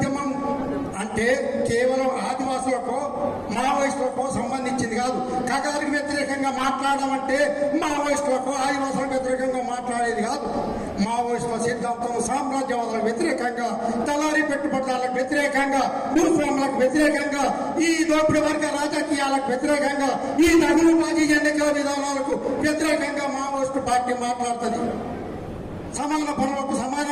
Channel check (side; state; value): both; identical; correlation 1.00